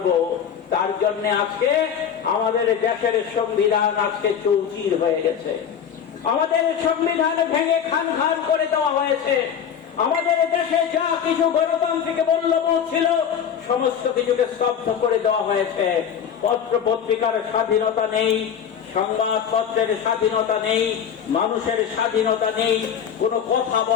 তার জন্য আজকে আমাদের দেশের সংবিধান আজকে চৌচির হয়ে গেছে, আমাদের সংবিধান ভেঙে খান খান করে দেওয়া হয়েছে। আমাদের দেশে যা কিছু গণতান্ত্রিক মূল্যবোধ ছিল সমস্ত কিছুকে স্তব্ধ করে দেওয়া হয়েছে। পত্র পত্রিকার স্বাধীনতা নেই, সংবাদপত্রের স্বাধীনতা নেই, মানুষের স্বাধীনতা নেই, কোনো কথা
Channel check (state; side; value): quieter; right; 8.1 dB